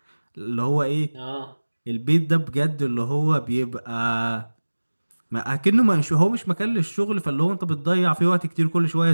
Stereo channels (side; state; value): both; inverted; correlation -1.00